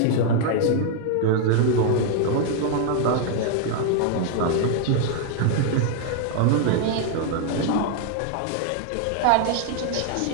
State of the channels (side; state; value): both; different; correlation 0.00